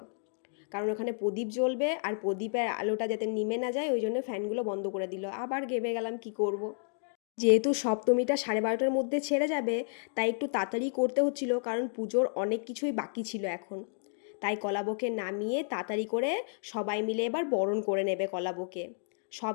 কারণ ওখানে প্রদীপ জ্বলবে আর প্রদীপের আলোটা যাতে নিমে না যায়, ওই জন্য ফ্যানগুলো বন্ধ করে দিল। আবার ঘেমে গেলাম, কি করব। যেহেতু সপ্তমীটা 12:30টার মধ্যে ছেড়ে যাবে, তাই একটু তাড়াতাড়ি করতে হচ্ছিল, কারণ পুজোর অনেক কিছুই বাকি ছিল এখন। তাই কলাবকে নামিয়ে তাড়াতাড়ি করে সবাই মিলে এবার বরণ করে নেবে কলাবকে। সব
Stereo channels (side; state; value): right; silent; digital silence